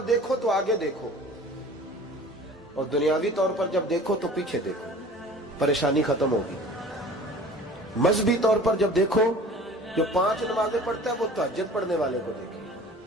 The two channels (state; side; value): normal; both; correlation 0.44